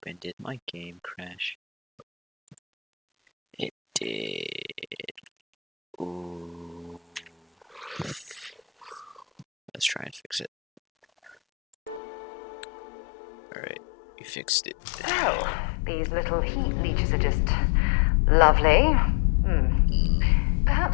Did my game crash? It did. Ooh. Let's try and fix it. Alright, we fixed it. So, these little heat leeches are just lovely.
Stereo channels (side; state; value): right; drops out; at 12.0 s